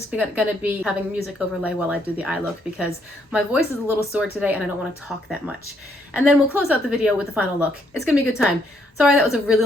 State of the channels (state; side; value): normal; both; correlation 0.72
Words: going to be having music overlay while I do the eye look because my voice is a little sore today and I don't want to talk that much. And then we'll close out the video with the final look. It's going to be a good time. Sorry, that was a really